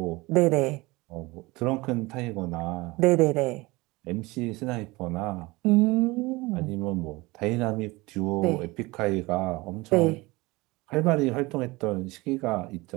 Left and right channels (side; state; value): left; quieter; 22.4 dB